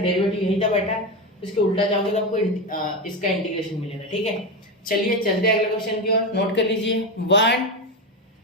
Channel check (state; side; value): normal; both; correlation 0.15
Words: यही था बेटा, इसके उल्टा जाओगे तो आपको इसका इंटीग्रेशन मिलेगा, ठीक है। चलिए चलते हैं अगले क्वेश्चन की ओर, नोट कर लीजिए 1